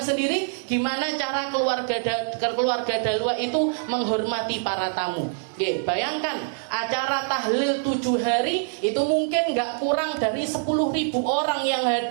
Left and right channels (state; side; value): silent; left; 62 dB below the other